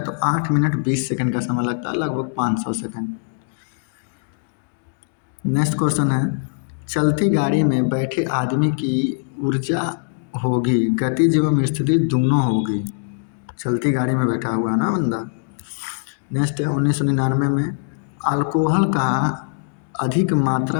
तो 8 मिनट 20 सेकंड का समय लगता है, लगभग 500 सेकंड। नेक्स्ट क्वेश्चन है, चलती गाड़ी में बैठे आदमी की ऊर्जा होगी गतिज एवं स्थिति दोनों होगी। चलती गाड़ी में बैठा हुआ है ना बंदा। नेक्स्ट है, 1999 में अल्कोहल का अधिक मात्रा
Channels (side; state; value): right; silent; digital silence